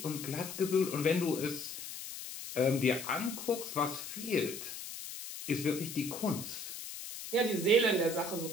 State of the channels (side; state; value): left; noise; hiss, 9 dB below the sound